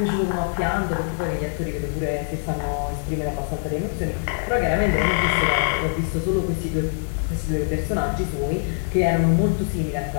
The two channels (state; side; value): silent; right; digital silence